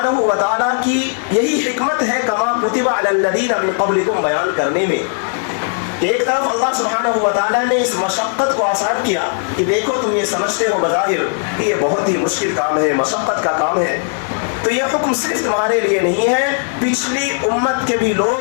و تعالیٰ کی یہی حکمت ہے کما کتب علی الذین من قبلکم بیان کرنے میں. ایک طرف اللہ سبحانہ و تعالیٰ نے اس مشقت کو آسان کیا کہ دیکھو تم یہ سمجھتے ہو بظاہر کہ یہ بہت ہی مشکل کام ہے، مشقت کا کام ہے، تو یہ حکم صرف تمہارے لیے نہیں ہے، پچھلی امت کے بھی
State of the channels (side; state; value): right; silent; 68 dB below the other